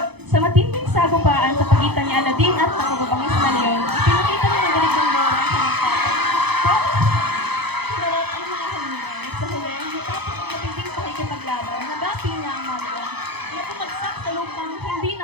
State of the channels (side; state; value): left; late; 0.98 ms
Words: Sa matinding sagupaan sa pagitan ni Aladdin at ng mababangis na leon, ipinakita ni Madalig ng Moro ang kanyang tatay. Sinarap ang mga halingan. Sa huli, matapos ang matinding pakikipaglaban, nagapi niya ang mga leon na pumagsak sa lupang hindi